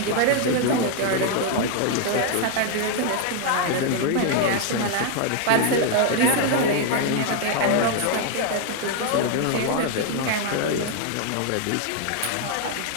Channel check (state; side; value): different; both; correlation 0.00